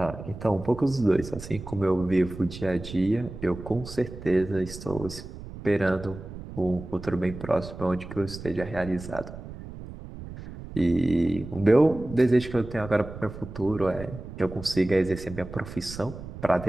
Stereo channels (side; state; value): right; noise; rumble, 12 dB below the sound